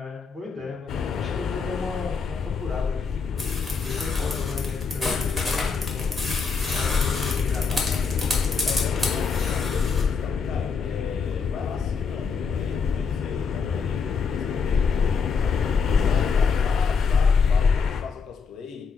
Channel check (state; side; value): quieter; right; 5.4 dB